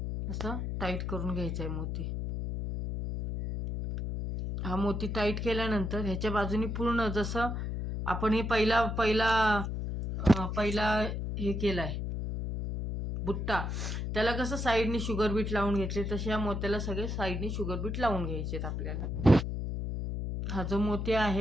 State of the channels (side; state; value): left; noise; hum, 3 dB below the sound